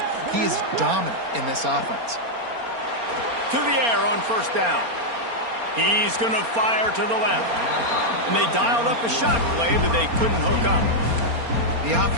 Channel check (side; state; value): left; late; 4.3 ms